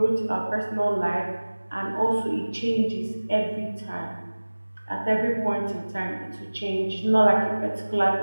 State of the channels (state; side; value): inverted; both; correlation -1.00